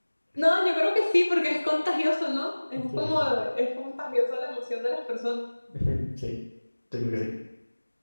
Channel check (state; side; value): inverted; both; correlation -1.00